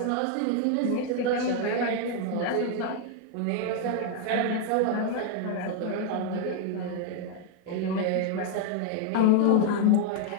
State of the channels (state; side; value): different; both; correlation 0.00